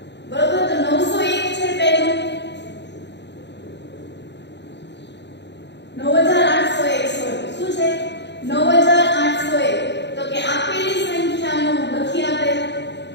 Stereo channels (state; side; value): late; right; 0.51 ms